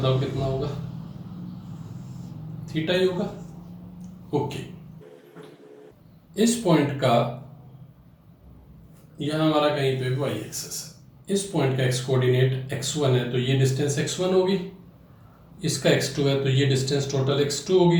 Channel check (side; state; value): both; identical; correlation 1.00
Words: कितना होगा? थीटा ही होगा। ओके। इस पॉइंट का यहां हमारा कहीं पे वाई एक्सिस है, इस पॉइंट का एक्स कोऑर्डिनेट x1 है, तो ये डिस्टेंस x1 होगी। इसका x2 है तो ये डिस्टेंस टोटल x2 होगी।